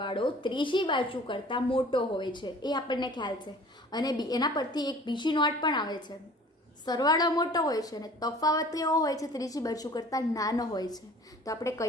ત્રીજી બાજુ કરતાં મોટો હોય છે, એ આપણને ખ્યાલ છે. અને એના પરથી એક બીજી નોટ પણ આવે છે, સરવાળો મોટો હોય છે અને તફાવત કેવો હોય છે? ત્રીજી બાજુ કરતાં નાનો હોય છે. તો આપણે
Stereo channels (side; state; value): both; normal; correlation 0.48